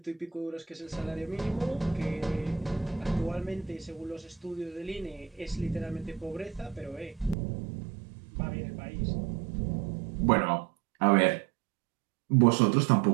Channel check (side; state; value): left; drops out; at 7.4 s